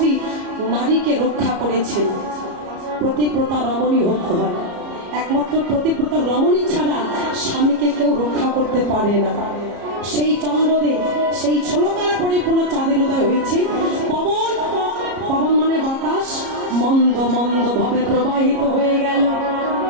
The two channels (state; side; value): late; left; 33 ms